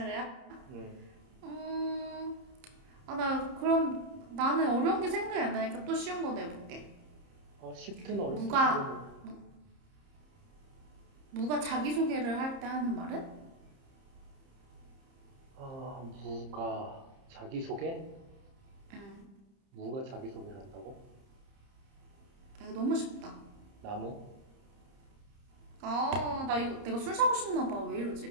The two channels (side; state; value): left; late; 30 ms